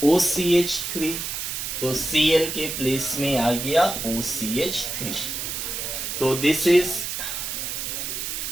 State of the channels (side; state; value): right; noise; hiss, 4 dB below the sound